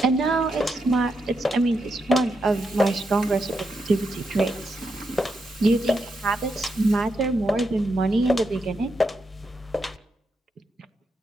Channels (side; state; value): both; normal; correlation 0.83